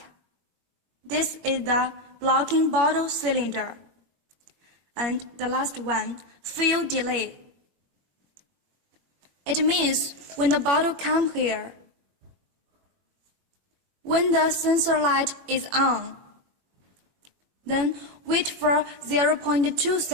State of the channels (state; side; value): late; left; 21 ms